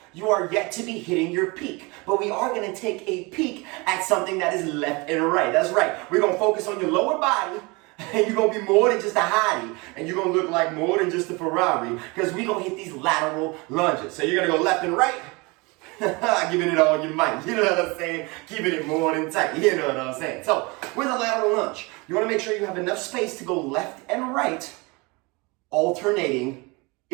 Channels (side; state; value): left; quieter; 26.6 dB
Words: you are yet to be hitting your peak. But we are going to take a peek at something that is left and right. That's right. We're going to focus on your lower body. And you're going to be more than just a hottie. And you're going to look like more than just a Ferrari. Because we're going to hit these lateral lunges. So you're going to go left and right. Giving it all you might. You know what I'm saying? Keeping it more than tight. You know what I'm saying? So with a lateral lunge, you want to make sure you have enough space to go left and right. Alternating